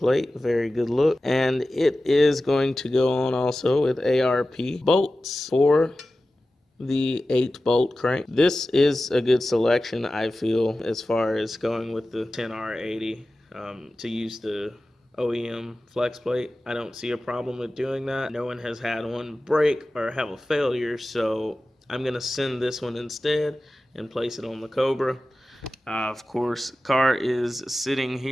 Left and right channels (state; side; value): normal; both; correlation 0.95